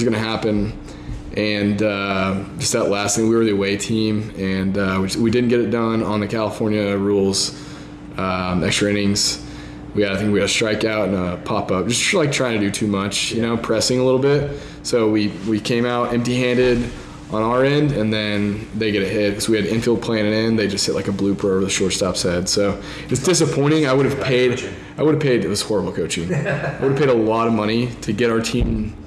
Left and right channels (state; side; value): identical; both; correlation 1.00